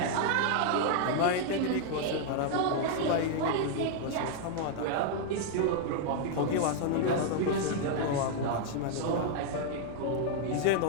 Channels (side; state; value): both; different; correlation 0.00